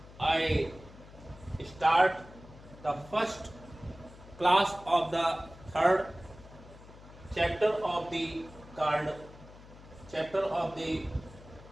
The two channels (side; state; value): left; noise; hum, 19 dB below the sound